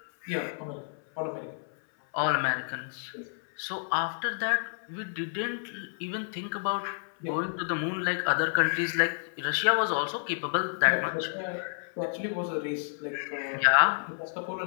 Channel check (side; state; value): right; silent; 58 dB below the other